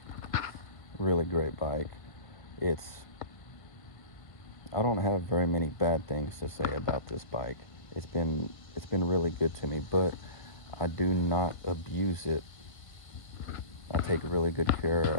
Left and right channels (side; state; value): right; late; 1.5 ms